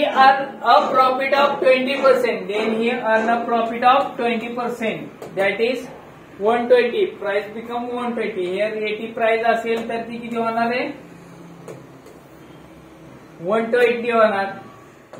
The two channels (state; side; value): identical; both; correlation 1.00